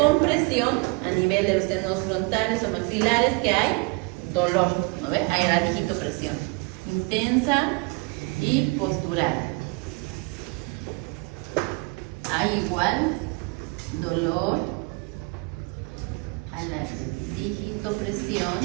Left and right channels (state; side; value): quieter; left; 28.3 dB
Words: a nivel de los senos frontales o maxilares, que hay dolor, ¿no ve? Hay la digitopresión intensa y postural. Hay igual dolor a la digitopresión